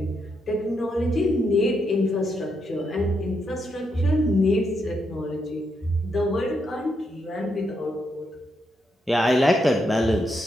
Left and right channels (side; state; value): both; normal; correlation 0.80